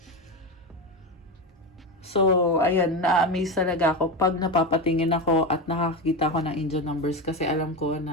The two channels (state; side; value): normal; both; correlation 0.17